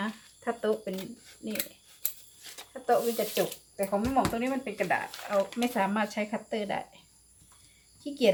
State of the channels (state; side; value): identical; both; correlation 1.00